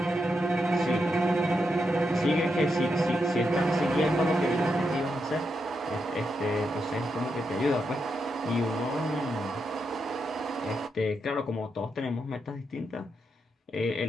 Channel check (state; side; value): normal; both; correlation 0.84